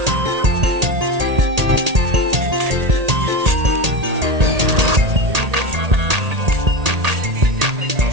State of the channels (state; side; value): late; left; 1.8 ms